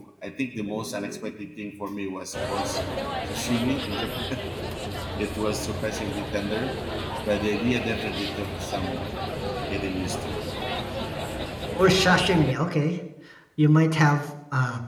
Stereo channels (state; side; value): identical; both; correlation 1.00